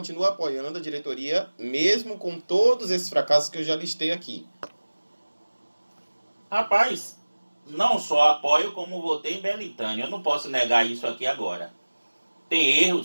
apoiando a diretoria, mesmo com todos esses fracassos que eu já listei aqui. Rapaz, não só apoio como votei em Belintânia, eu não posso negar isso aqui agora. Tem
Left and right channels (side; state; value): both; inverted; correlation -1.00